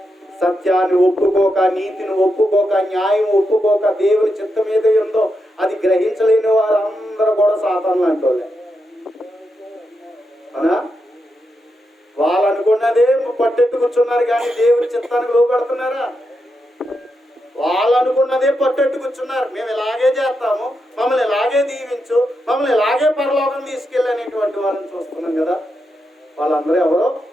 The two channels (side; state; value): both; normal; correlation 0.85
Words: సత్యాన్ని ఒప్పుకోక, నీతిని ఒప్పుకోక, న్యాయం ఒప్పుకోక, దేవుని చిత్తం ఏదో ఉందో అది గ్రహించలేని వారందరూ కూడా సాతాను లాంటోళ్ళే. అవునా? వాళ్ళు అనుకున్నదే పట్టెట్టు కూర్చున్నారు కానీ దేవుని చిత్తానికి లోపడుతున్నారా? వాళ్ళు అనుకున్నదే పట్టెట్టు కూర్చున్నారు. మేము ఇలాగే చేస్తాము, మమ్మల్ని ఇలాగే దీవించు, మమ్మల్ని ఇలాగే పరలోకం తీసుకెళ్ళనేటువంటి వాళ్ళని చూస్తున్నాం కదా. వాళ్ళందరూ ఎవరో